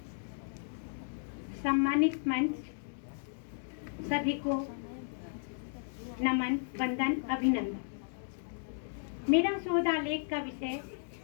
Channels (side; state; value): right; silent; digital silence